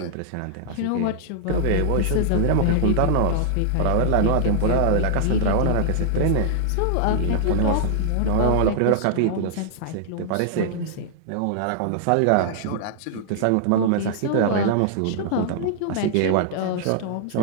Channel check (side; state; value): both; different; correlation -0.01